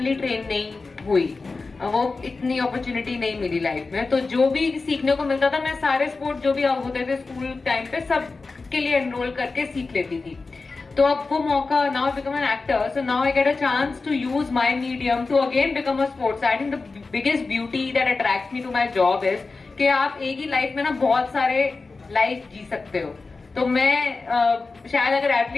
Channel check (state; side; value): quieter; right; 3.9 dB